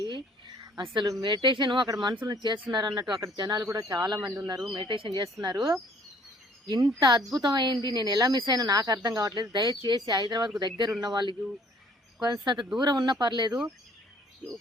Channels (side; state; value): both; normal; correlation 0.59